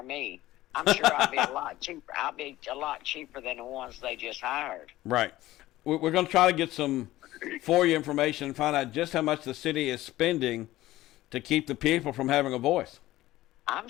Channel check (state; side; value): quieter; right; 16.2 dB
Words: me. I'm sure I'll be a lot cheaper. I'll be a lot cheaper than the ones they just hired. Right. We're going to try to get some for you information and find out just how much the city is spending to keep the people from having a voice.